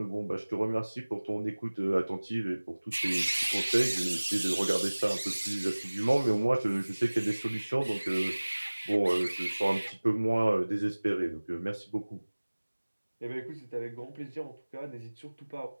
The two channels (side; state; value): both; inverted; correlation -1.00